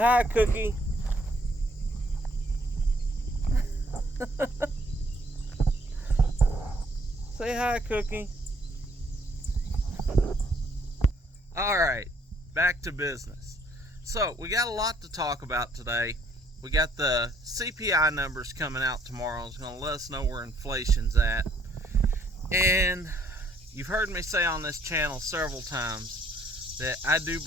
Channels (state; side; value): normal; both; correlation 0.65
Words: hi, Cookie. Say hi, Cookie. Alright, back to business. So, we got a lot to talk about today. We got the CPI numbers coming out tomorrow. It's going to let us know where inflation's at. And you've heard me say on this channel several times that I do